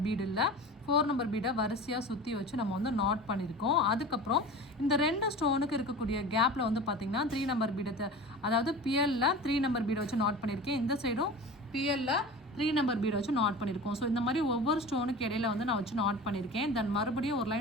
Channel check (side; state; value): both; normal; correlation 0.35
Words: பீடு இல்லை 4 நம்பர் பீடை வரிசையாக சுற்றி வச்சு நம்ம வந்து நாட் பண்ணியிருக்கோம். அதுக்கப்புறம் இந்த 2 ஸ்டோனுக்கு இருக்கக்கூடிய கேப்பில் வந்து பார்த்திங்கன்னா 3 நம்பர் பீடத்தை அதாவது பிஎல்ல 3 நம்பர் பீடை வச்சு நாட் பண்ணியிருக்கேன். இந்த சைடும் பிஎல்ல 3 நம்பர் பீட் வச்சு நாட் பண்ணியிருக்கோம். ஸோ இந்த மாதிரி ஒவ்வொரு ஸ்டோனுக்கு இடையில வந்து நான் வச்சு நாட் பண்ணியிருக்கேன். தென் மறுபடியும் ஒரு